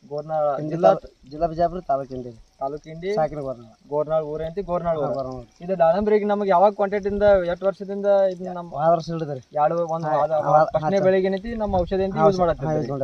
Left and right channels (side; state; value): both; identical; correlation 1.00